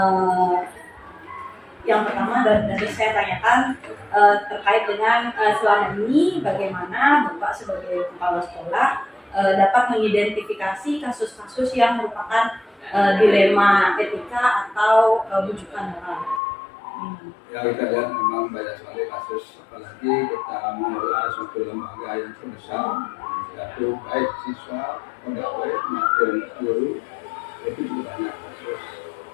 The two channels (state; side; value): drops out; right; at 16.4 s